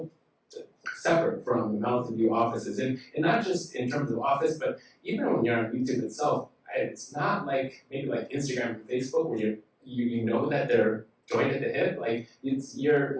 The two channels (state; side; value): identical; both; correlation 1.00